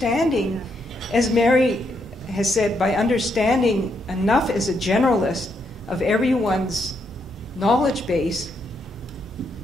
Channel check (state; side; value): normal; both; correlation 0.78